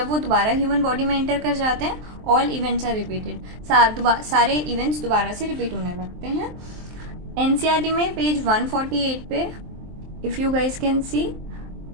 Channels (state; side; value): late; left; 23 ms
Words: वो दोबारा ह्यूमन बॉडी में एंटर कर जाते हैं ऑल इवेंट्स आर रिपीटेड, सारे इवेंट्स दोबारा से रिपीट होने लगते हैं। एनसीईआरटी में पेज 148 पे if you guys can see,